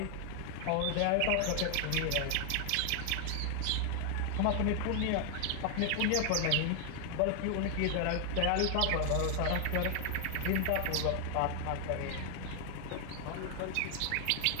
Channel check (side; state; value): both; different; correlation 0.00